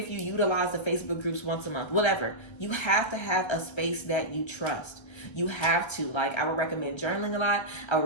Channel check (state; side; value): late; right; 1.3 ms